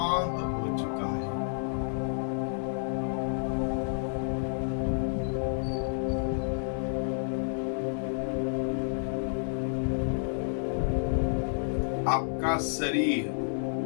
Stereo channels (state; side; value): silent; right; digital silence